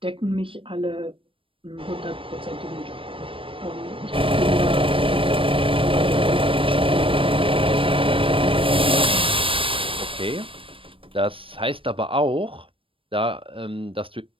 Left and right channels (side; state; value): left; late; 0.25 ms